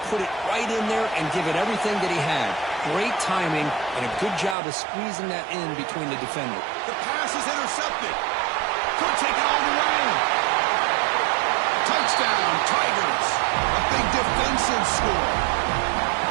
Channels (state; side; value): drops out; left; at 4.5 s